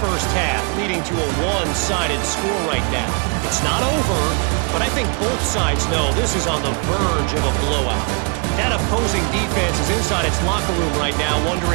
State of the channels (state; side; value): quieter; left; 37.6 dB